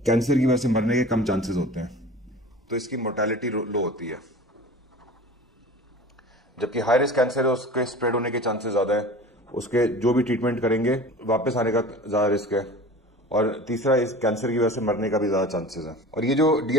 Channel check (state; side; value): normal; both; correlation 0.38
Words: कैंसर की वजह से मरने के कम चांसेस होते हैं, तो इसकी मोर्टेलिटी लो होती है। जबकि हाई रिस्क कैंसर है उसके स्प्रेड होने के चांसेस ज्यादा है, उसके जो भी ट्रीटमेंट करेंगे वापस आने का ज्यादा रिस्क है, और तीसरा, इस कैंसर की वजह से मरने का भी ज्यादा चांसेस है। और ये जो